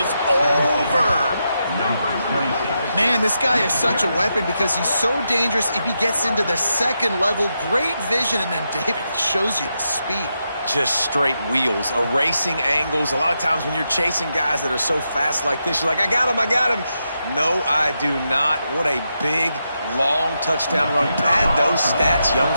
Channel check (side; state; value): both; inverted; correlation -0.85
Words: over. Man, this guy is such a weapon because he's so dangerous if he gets into the 2nd level. Great vision, and then David shows you the speed. Just straight wheels, erasing angles. A lot of times when you're chasing guys that are so fast like this, you're like, I got him, I got him. No, I do not. What a big, long touchdown run. Pad those stats, young